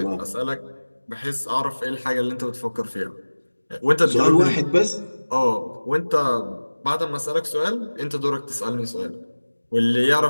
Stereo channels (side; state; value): both; inverted; correlation -1.00